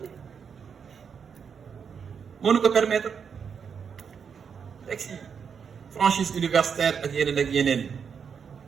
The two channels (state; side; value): quieter; left; 6.7 dB